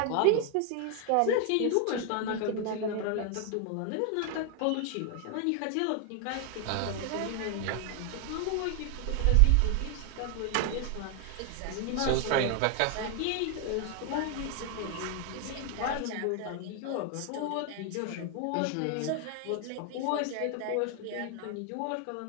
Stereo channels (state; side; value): different; both; correlation 0.00